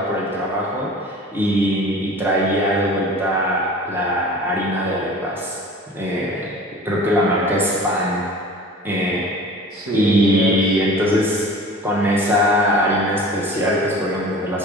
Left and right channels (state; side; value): normal; both; correlation 0.41